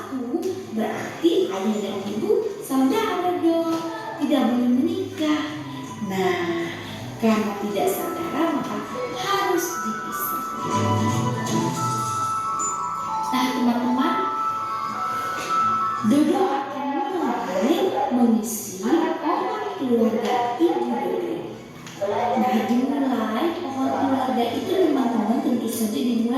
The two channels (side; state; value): both; identical; correlation 1.00